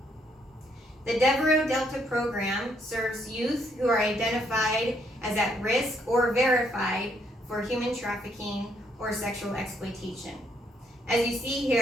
The Devereux Delta program serves youth who are identified as at risk or verified for human trafficking or sexual exploitation. As you see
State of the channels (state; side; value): normal; both; correlation 0.71